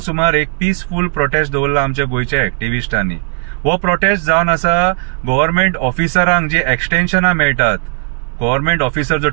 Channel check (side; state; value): left; silent; digital silence